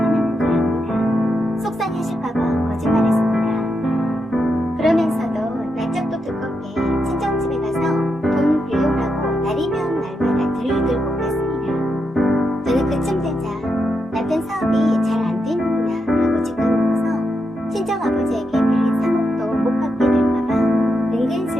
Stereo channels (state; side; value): normal; both; correlation 0.84